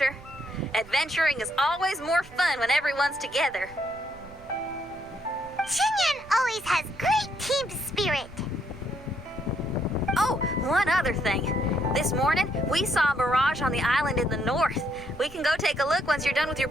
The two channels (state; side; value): noise; right; rumble, 21 dB below the sound